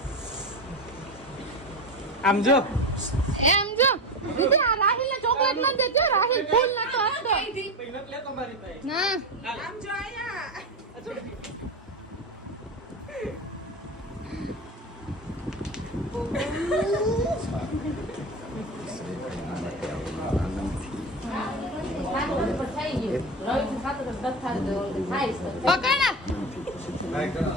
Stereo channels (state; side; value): normal; both; correlation 0.21